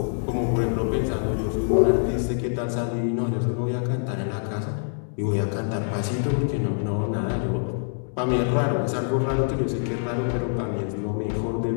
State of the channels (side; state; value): right; silent; digital silence